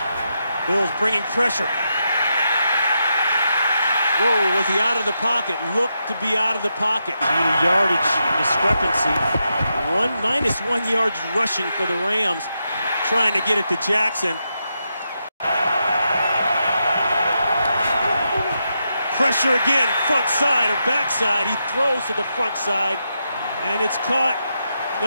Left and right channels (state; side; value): inverted; both; correlation -0.84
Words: Bills bringing pressure. Whoa, was he out of the pocket? Looked to be out of the pocket. Yardage discrepancy. -1 yards rushing for the Rams, trying to get it to Jackson. Pressure again, front side or backside. He throws to the front side, and it's caught.